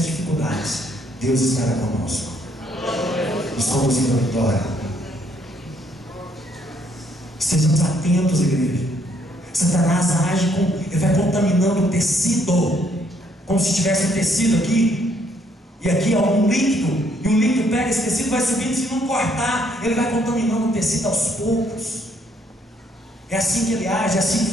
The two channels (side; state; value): both; normal; correlation 0.68